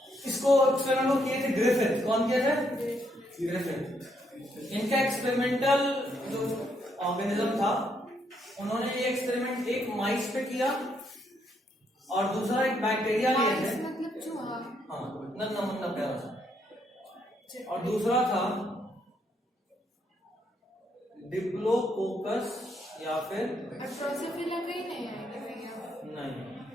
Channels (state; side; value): normal; both; correlation 0.74